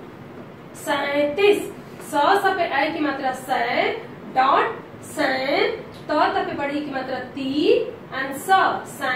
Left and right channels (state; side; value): identical; both; correlation 1.00